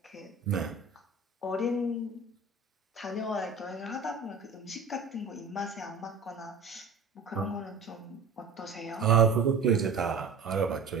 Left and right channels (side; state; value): left; quieter; 4.3 dB